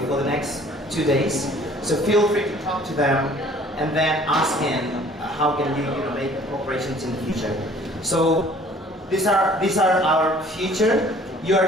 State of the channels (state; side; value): normal; both; correlation 0.53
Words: for the next 2 days. So feel free to talk to them and then ask him how can you make corporations in the future. So these are our future. You